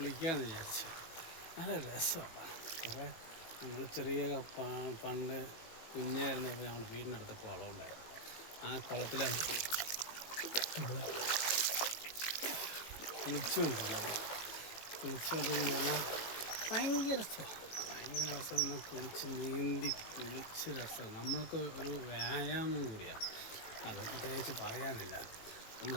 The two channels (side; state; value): right; late; 18 ms